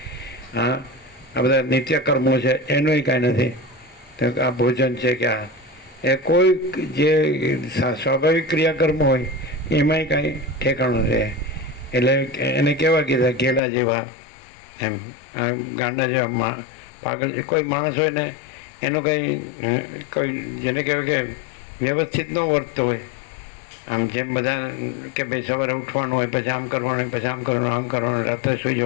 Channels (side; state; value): right; drops out; at 13.6 s